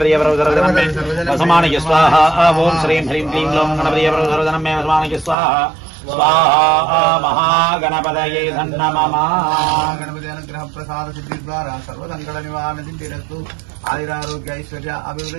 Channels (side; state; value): left; drops out; at 5.4 s